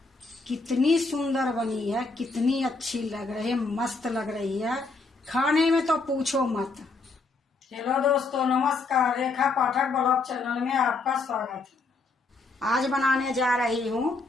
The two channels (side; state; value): right; quieter; 3.8 dB